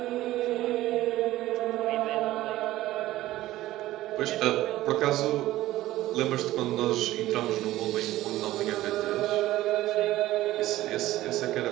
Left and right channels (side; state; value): left; quieter; 15.6 dB